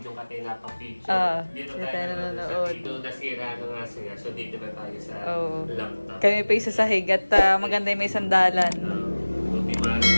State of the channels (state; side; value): inverted; both; correlation -1.00